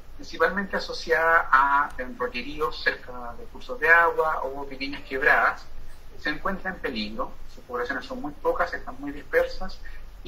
principalmente asociada a rolleríos cerca de cursos de agua o pequeñas quebradas. Se encuentra en peligro, sus poblaciones son muy pocas, están muy dispersas,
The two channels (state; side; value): identical; both; correlation 1.00